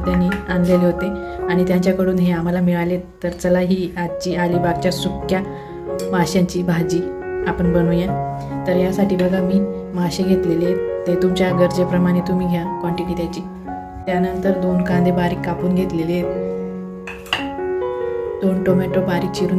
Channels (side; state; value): both; identical; correlation 1.00